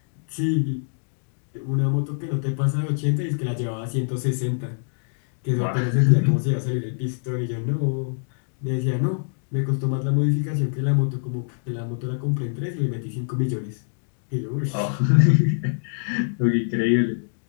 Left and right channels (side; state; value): right; silent; digital silence